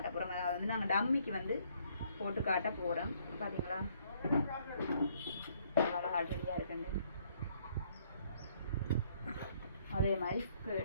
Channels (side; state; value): both; inverted; correlation -0.66